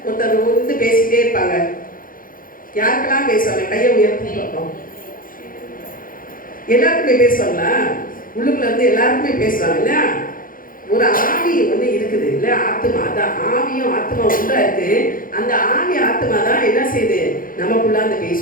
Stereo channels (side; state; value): right; late; 0.40 ms